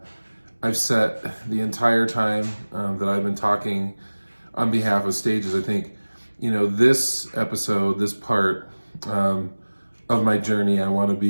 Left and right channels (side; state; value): both; inverted; correlation -1.00